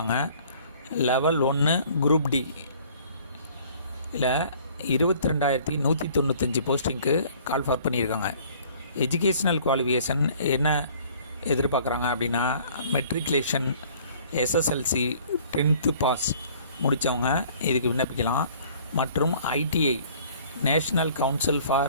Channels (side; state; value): both; inverted; correlation -0.54